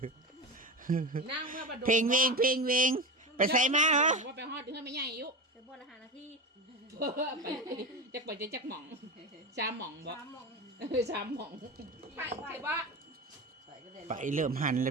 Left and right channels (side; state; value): both; normal; correlation 0.23